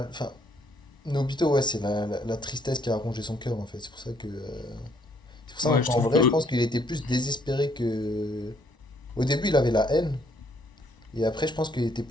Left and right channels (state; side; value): normal; both; correlation 0.67